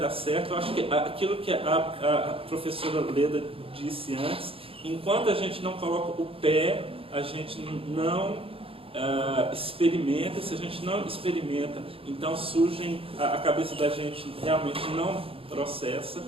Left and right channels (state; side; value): late; left; 0.27 ms